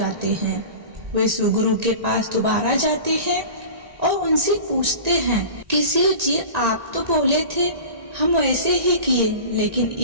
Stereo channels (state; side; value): late; left; 1.9 ms